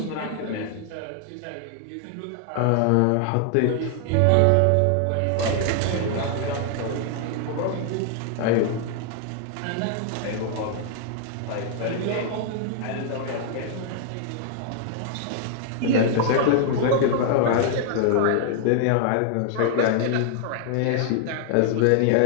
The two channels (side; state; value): both; different; correlation 0.00